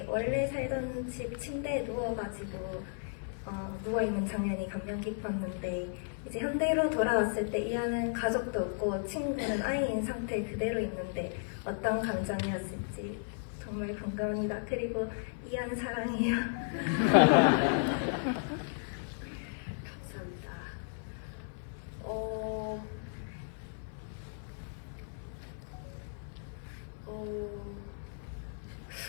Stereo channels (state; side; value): silent; right; 55 dB below the other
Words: 원래 살던 집 침대에 누워가지고 누워있는 장면이 감명 깊었는데 이제 현대로 돌아왔을 때 이안은 가족도 없고 친구는 아이인 상태 그대로 있는데 어떤 감정이었을지 정말 궁금합니다. 그리고 이안 사랑해요. 감사합니다.